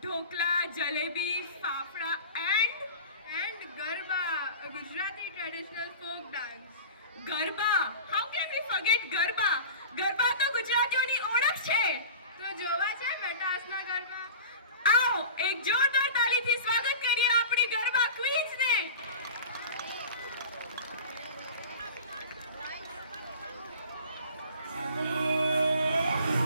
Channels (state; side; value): inverted; both; correlation -0.37